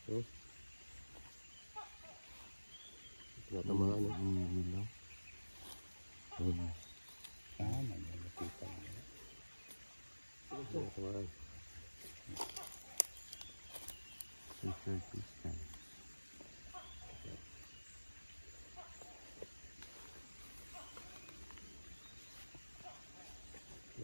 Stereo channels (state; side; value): inverted; both; correlation -1.00